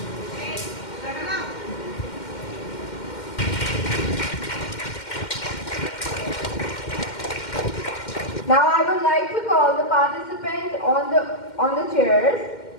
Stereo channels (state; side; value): late; right; 2.1 ms